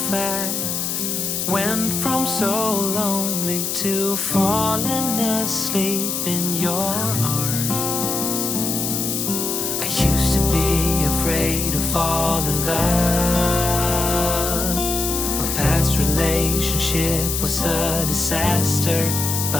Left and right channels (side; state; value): left; noise; hiss, 1 dB below the sound